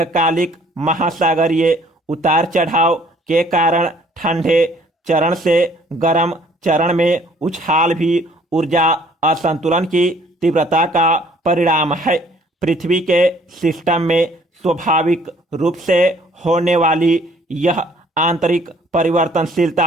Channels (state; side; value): normal; both; correlation 0.59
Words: महासागरीय उतार चढ़ाव के कारण ठंडे चरण से गर्म चरण में उछाल भी ऊर्जा असंतुलन की तीव्रता का परिणाम है। पृथ्वी के सिस्टम में स्वाभाविक रूप से होने वाली यह आंतरिक